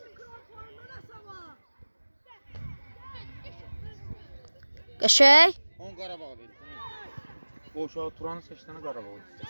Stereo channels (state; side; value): inverted; both; correlation -1.00